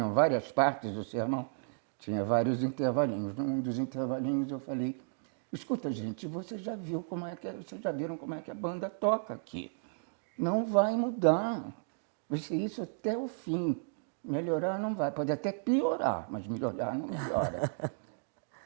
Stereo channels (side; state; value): left; silent; digital silence